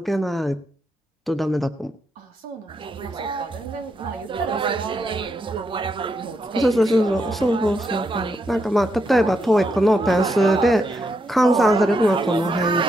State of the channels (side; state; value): both; normal; correlation 0.81